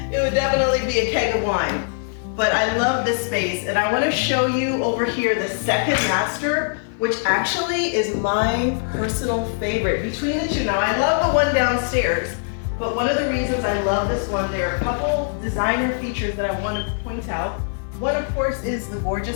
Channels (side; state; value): right; silent; 56 dB below the other